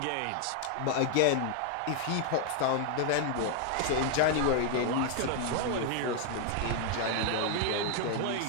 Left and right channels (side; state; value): both; different; correlation 0.00